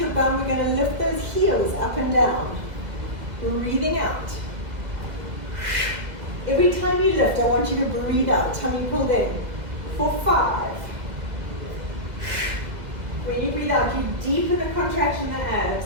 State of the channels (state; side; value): late; left; 2.0 ms